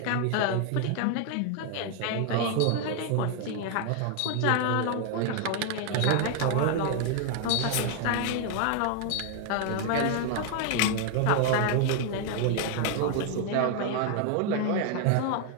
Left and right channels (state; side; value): different; both; correlation 0.00